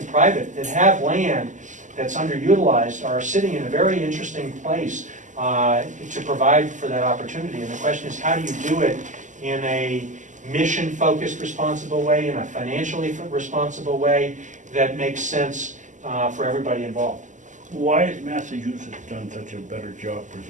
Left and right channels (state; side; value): late; left; 0.36 ms